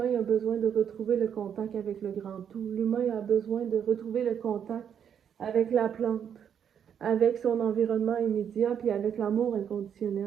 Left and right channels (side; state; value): left; quieter; 8.3 dB